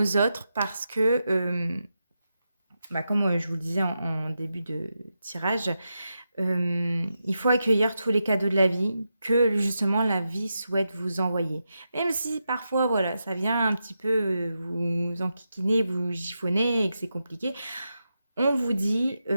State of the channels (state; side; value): inverted; both; correlation -0.87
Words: autres parce que, comme je vous le disais en début de tirage, il faut accueillir tous les cadeaux de la vie que justement la vie souhaite vous envoyer. Même si parfois, voilà, ça vient un petit peu vous enquiquiner, vous chiffonner et que c'est compliqué, on vous dit